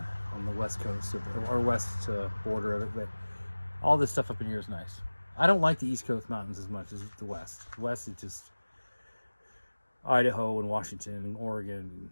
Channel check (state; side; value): inverted; both; correlation -1.00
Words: on the west coast or west border of it. But all this stuff up in here is nice. I don't like the East Coast mountains as much as the West. The West is just Idaho and Washington and Oregon and